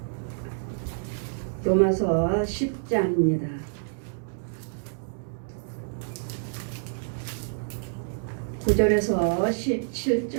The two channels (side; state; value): left; silent; digital silence